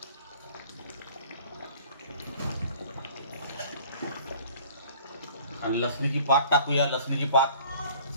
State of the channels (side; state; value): both; inverted; correlation -0.51